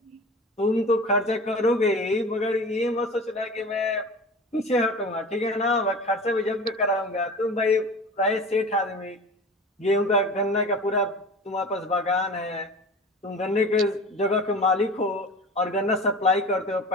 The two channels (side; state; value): both; normal; correlation 0.36